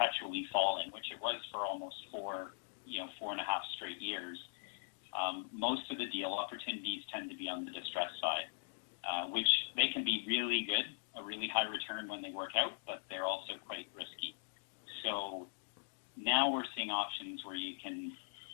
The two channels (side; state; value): right; silent; digital silence